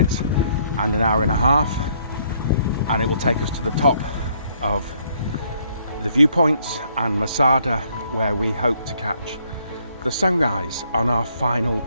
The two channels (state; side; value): inverted; both; correlation -0.67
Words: and an hour and a half, and it will take us to the top of the viewpoints and Masada, where we hope to catch the sunrise on our final